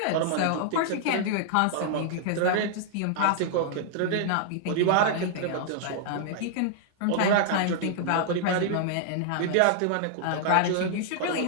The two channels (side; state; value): both; different; correlation -0.01